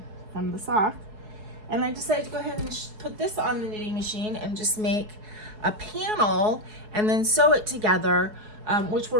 from the sock. And I decided to go ahead and put this on the knitting machine and just make a panel and then sew it together, which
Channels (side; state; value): left; late; 4.7 ms